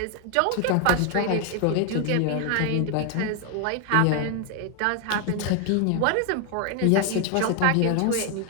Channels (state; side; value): different; both; correlation 0.01